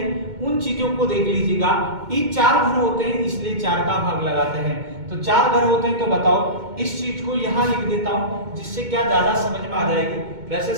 उन चीजों को देख लीजिएगा। ये 4 घर होते हैं इसलिए 4 का भाग लगाते हैं। तो 4 घर होते हैं, तो बताओ इस चीज को यहाँ लिख देता हूं जिससे क्या ज्यादा समझ में आ जाएगी। वैसे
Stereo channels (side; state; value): left; late; 2.2 ms